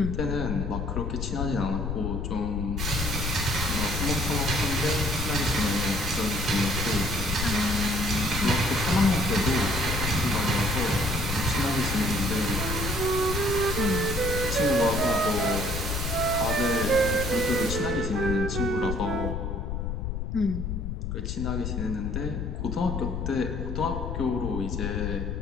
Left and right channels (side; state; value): left; noise; rumble, 3 dB below the sound